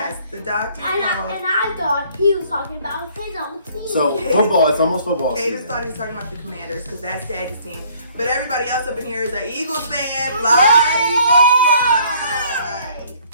the doctor And called. I thought he was talking about his own team. So football, it's almost football Cadence season. thought he was talking about the Commanders because that's Daddy's team. But everybody else up in here is an Eagles fan. Fly,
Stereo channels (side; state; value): both; inverted; correlation -0.59